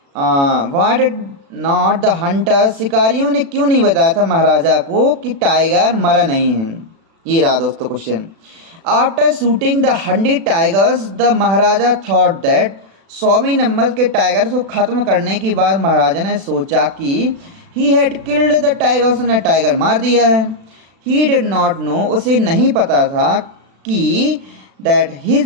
Y did not the Hunter, शिकारियों ने क्यों नहीं बताया था महाराजा को कि टाइगर मरा नहीं है। ये रहा दोस्तों question. After shooting the 100 tigers the maharaja thought that, 100वें नंबर के टाइगर को खत्म करने के बाद महाराजा ने सोचा कि he had killed the tiger, उसने टाइगर मार दिया है। ही डिड नॉट नो, उसे नहीं पता था कि दैट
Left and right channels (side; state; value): left; late; 36 ms